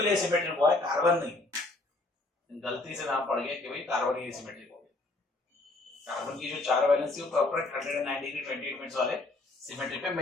एसिमेट्रिक हुआ है, कार्बन नहीं, गलती से नाम पड़ गया कि भाई कार्बन ही एसिमेट्रिक हो गया। कार्बन की जो 4 वैलेंसी वो प्रॉपर 109 डिग्री 28 मिनट्स वाले सिमेट्री पे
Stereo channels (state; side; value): quieter; right; 3.0 dB